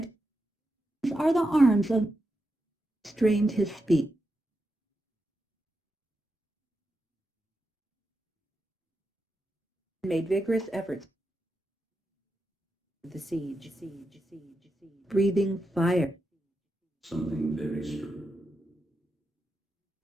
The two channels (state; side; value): normal; both; correlation 0.87